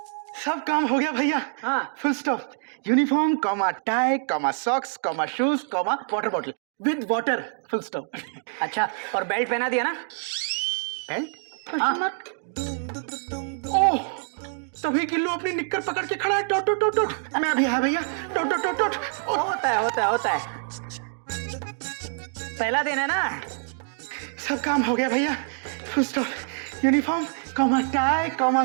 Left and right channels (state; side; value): silent; left; digital silence